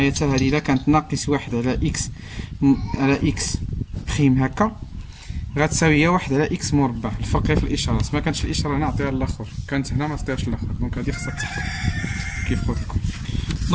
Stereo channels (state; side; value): identical; both; correlation 1.00